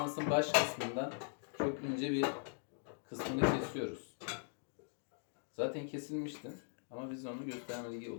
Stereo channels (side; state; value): right; silent; digital silence